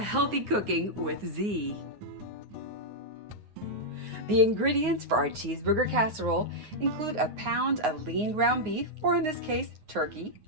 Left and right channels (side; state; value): left; late; 9.5 ms